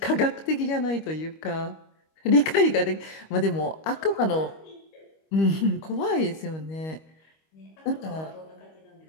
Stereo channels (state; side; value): late; right; 25 ms